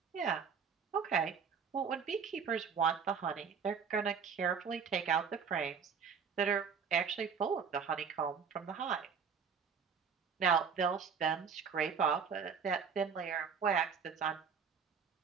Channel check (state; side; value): quieter; left; 6.4 dB